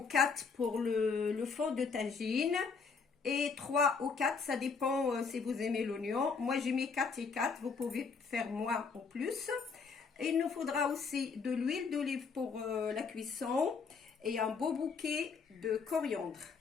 4 pour le fond de tagine et 3 ou 4, ça dépend si vous aimez l'oignon. Moi j'ai mis 4 et 4, vous pouvez faire moins ou plus. Il nous faudra aussi de l'huile d'olive pour la cuisson et un beau bouquet de coriandre.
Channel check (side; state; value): right; quieter; 5.2 dB